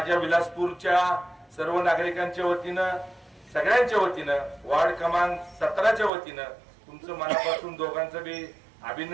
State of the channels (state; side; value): drops out; left; at 6.1 s